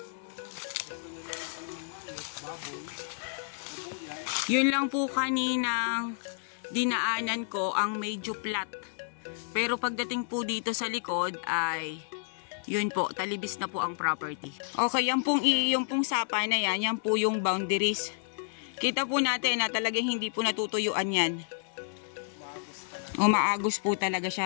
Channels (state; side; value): silent; right; 57 dB below the other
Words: Yun lang po kaninang dinaanan ko ang medyo flat. Pero pagdating po dito sa likod ay yun po, talibis na po ang property. Okay, yung pong sapa na yan, yan po yung boundaries. Kita po natin na talagang hindi po natutuyuan yan. Umaagos po talaga